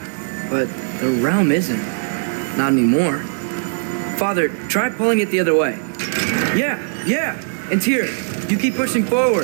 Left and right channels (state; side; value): silent; left; 56 dB below the other